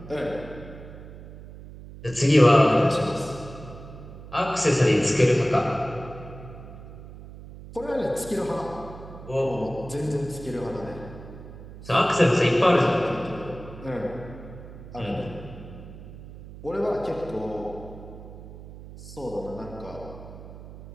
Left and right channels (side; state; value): right; noise; hum, 15 dB below the sound